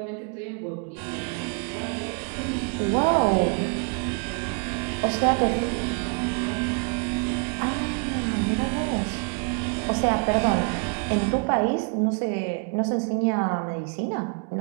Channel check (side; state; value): left; quieter; 38.9 dB